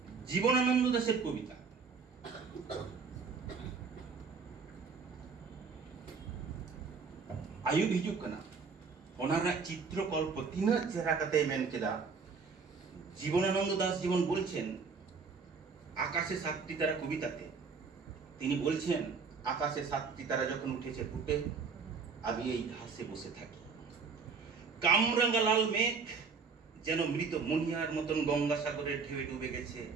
জীবনানন্দ দাশের কবিতা आयुब हिजुग कना ओनारा चित्रकल्प तीना चेहरा कते मेन केदा জীবনানন্দ দাস জীবন বলছেন আকাশে সাতটি তারা কবিতাতে তিনি বলছেন আকাশে সাতটি তারা যখন উঠেছে ফুটে আমি এই ঘাসে বসে থাকি কামরাঙ্গা লাল মেঘ যেন মৃত মনিহার মতন গঙ্গাসাগরের ঢেউয়ে ডুবে গেছে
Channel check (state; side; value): quieter; left; 5.1 dB